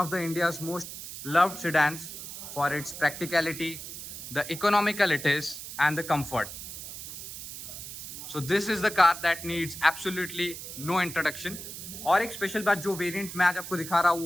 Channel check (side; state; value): right; noise; hiss, 10 dB below the sound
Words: the India's most loved sedans for its practicality, the economical it is and the comfort. So this is the car that needs absolutely no introduction. और एक स्पेशल बात, जो वेरिएंट मैं आज आपको दिखा रहा